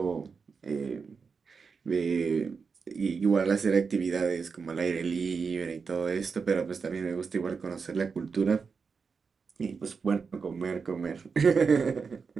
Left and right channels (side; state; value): left; quieter; 5.3 dB